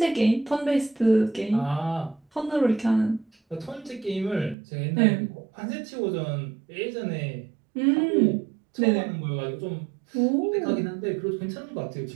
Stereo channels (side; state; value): left; drops out; at 4.5 s